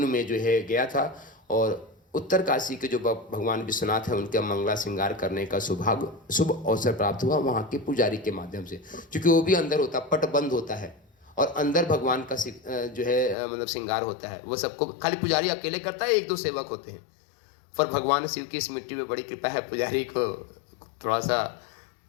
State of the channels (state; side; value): drops out; right; at 13.4 s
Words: में जो है गया था, और उत्तर काशी के जो भगवान विश्वनाथ हैं उनका मंगला श्रृंगार करने का शुभ अवसर प्राप्त हुआ वहाँ के पुजारी के माध्यम से। क्योंकि वो भी अंदर होता, पट बंद होता है और अंदर भगवान का जो है मतलब श्रृंगार होता है। वो सबको खाली पुजारी अकेले करता है, एक दो सेवक होते हैं, पर भगवान शिव की इस मिट्टी में बड़ी कृपा है। पुजारी को थोड़ा सा